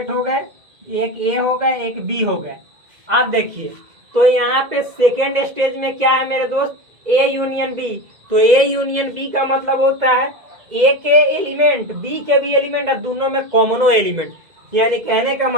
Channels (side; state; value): left; late; 2.0 ms